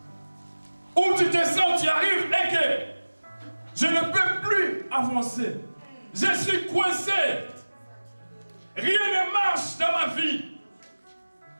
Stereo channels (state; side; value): inverted; both; correlation -1.00